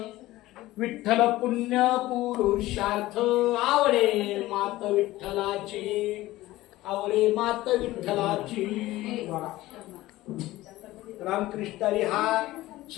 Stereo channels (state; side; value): quieter; right; 17.1 dB